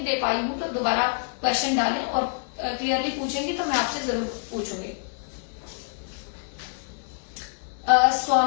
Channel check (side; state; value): right; silent; digital silence